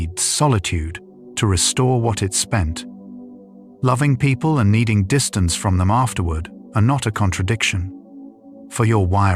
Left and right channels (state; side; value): identical; both; correlation 1.00